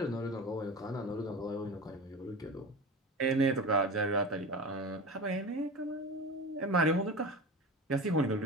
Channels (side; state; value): both; normal; correlation 0.30